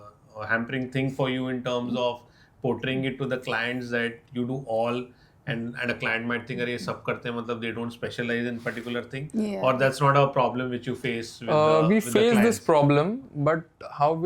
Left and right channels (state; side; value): identical; both; correlation 1.00